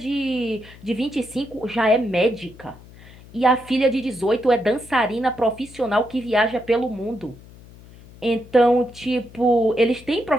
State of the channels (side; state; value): left; noise; hum, 21 dB below the sound